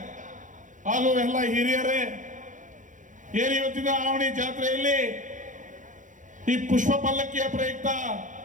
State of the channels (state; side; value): late; left; 0.37 ms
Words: ಹಾಗೂ ಎಲ್ಲ ಹಿರಿಯರೇ, ಇವತ್ತಿನ ಆವಣಿ ಜಾತ್ರೆಯಲ್ಲಿ ಈ ಪುಷ್ಪ ಪಲ್ಲಕ್ಕಿಯ ಪ್ರಯುಕ್ತ